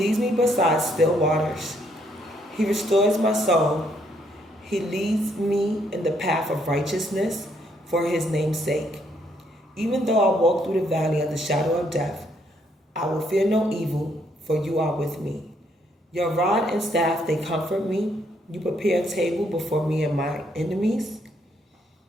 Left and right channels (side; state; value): both; normal; correlation 0.71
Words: me beside still waters. He restores my soul. He leads me in the path of righteousness for his name's sake. Even though I walk through the valley of the shadow of death, I will fear no evil, for you are with me. Your rod and staff, they comfort me. You prepare a table before me and my enemies.